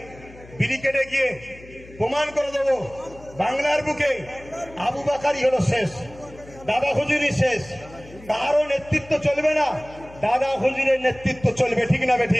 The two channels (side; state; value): left; noise; hum, 20 dB below the sound